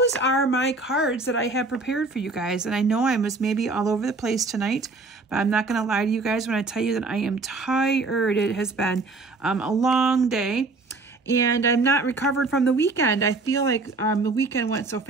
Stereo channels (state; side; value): quieter; left; 3.6 dB